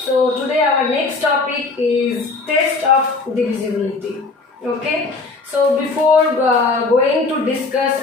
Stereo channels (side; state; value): right; quieter; 3.7 dB